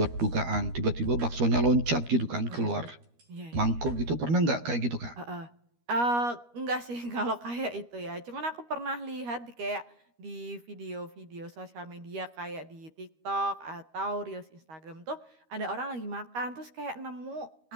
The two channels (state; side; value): late; left; 13 ms